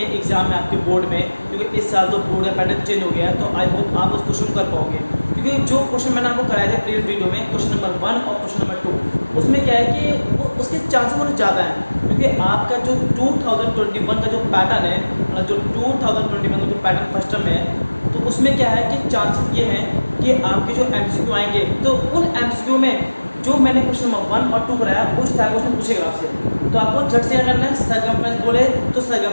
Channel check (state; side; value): inverted; both; correlation -1.00